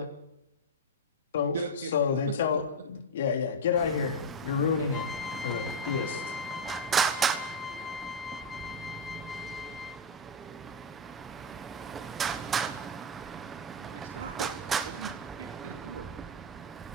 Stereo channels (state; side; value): normal; both; correlation 0.00